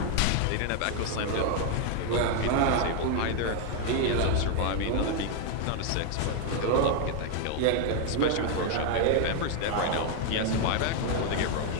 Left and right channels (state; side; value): different; both; correlation 0.00